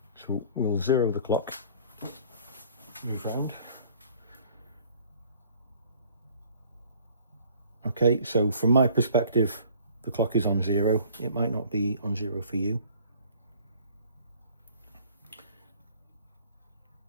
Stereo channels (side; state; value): both; inverted; correlation -0.52